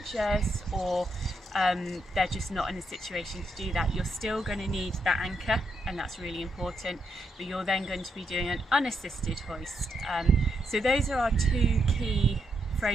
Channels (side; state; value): both; normal; correlation 0.80